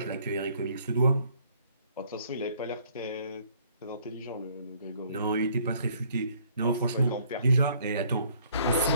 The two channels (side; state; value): both; inverted; correlation -0.61